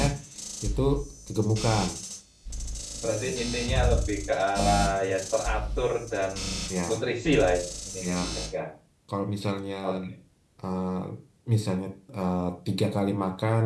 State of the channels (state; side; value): identical; both; correlation 1.00